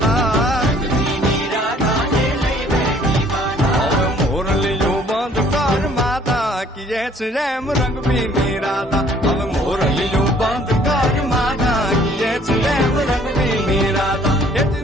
मोरलियो बंद कर माता किए रेम रंग पीनी राधा अब मोरलियो बंद कर माता किए रेम रंग पीनी राधा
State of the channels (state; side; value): normal; both; correlation 0.58